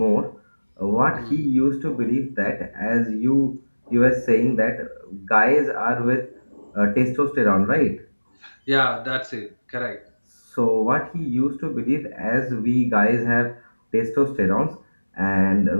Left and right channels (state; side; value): inverted; both; correlation -1.00